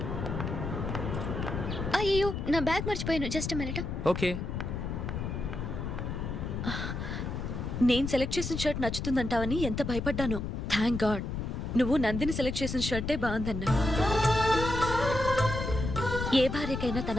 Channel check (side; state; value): left; noise; rumble, 4 dB below the sound